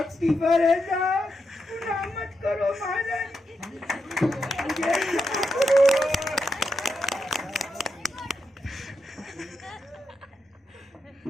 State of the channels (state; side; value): normal; both; correlation 0.85